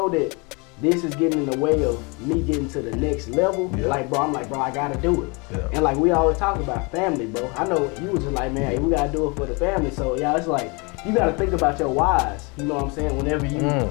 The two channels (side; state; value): right; quieter; 30.0 dB